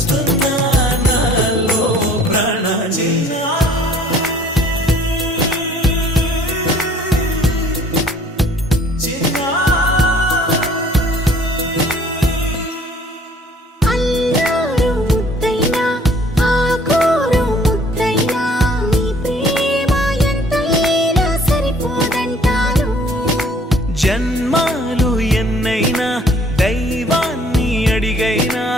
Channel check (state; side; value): normal; both; correlation 0.56